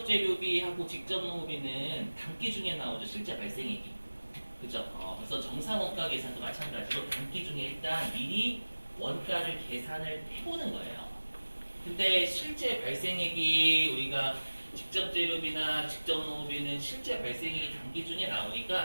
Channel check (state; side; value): inverted; both; correlation -1.00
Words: 재료비하고 직접 농업비는 단기 중에 나오죠. 실제 발생액이. 그죠? 그래서 정상 원가 계산도 마찬가지로 단기 중에 일단 미리 원가를 계산을 해보는 거예요. 근데 실제 발생액이 우리가 직접 재료비나 직접 농업비는 실제 발생액이 단기 중에